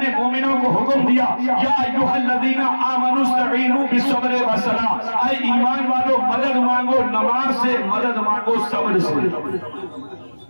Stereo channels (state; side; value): inverted; both; correlation -1.00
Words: نے مومنوں کو حکم دیا, یا ایھا الذین آمنوا استعینوا بالصبر والصلاۃ. اے ایمان والو مدد مانگو نماز سے, مدد مانگو صبر سے.